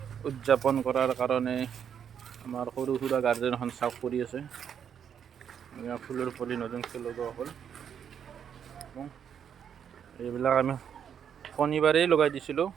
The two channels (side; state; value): left; quieter; 8.2 dB